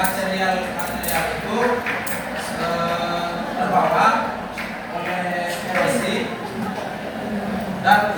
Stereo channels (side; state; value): both; identical; correlation 1.00